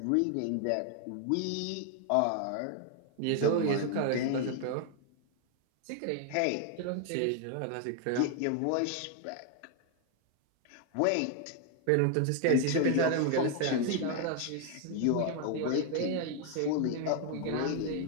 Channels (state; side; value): different; both; correlation 0.00